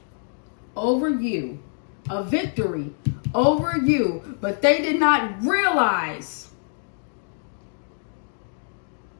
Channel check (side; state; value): right; silent; digital silence